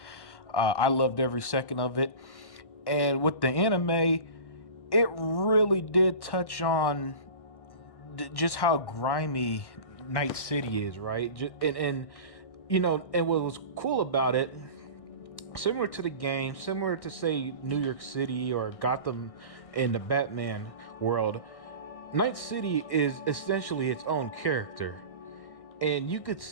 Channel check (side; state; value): right; late; 1.6 ms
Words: I loved every second of it. And with the anime, it really did touch on just how grimy Night City is, right? And what was cool about it, similar to the game, similar to say New York City or Gotham in the Batman world, Night City is essentially its own character, and you could